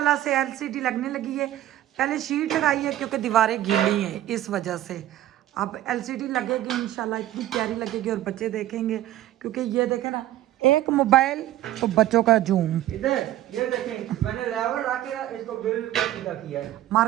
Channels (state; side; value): quieter; left; 13.8 dB